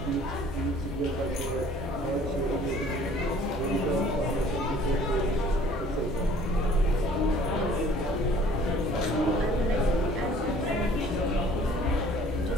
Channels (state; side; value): normal; both; correlation 0.53